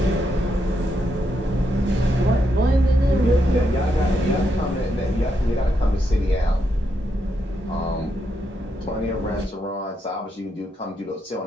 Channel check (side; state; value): both; normal; correlation 0.81